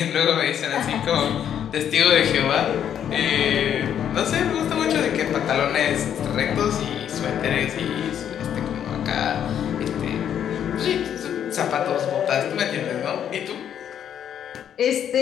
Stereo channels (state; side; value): quieter; right; 9.3 dB